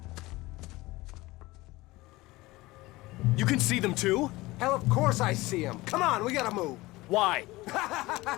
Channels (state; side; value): quieter; right; 20.0 dB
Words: You can see them too? Hell, of course I see them. Come on, we gotta move. Why?